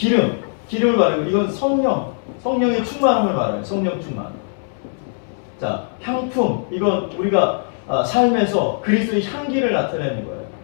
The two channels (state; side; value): silent; right; digital silence